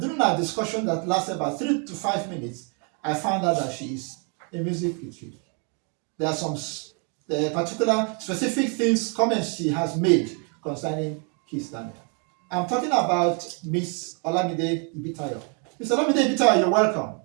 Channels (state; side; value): quieter; left; 38.4 dB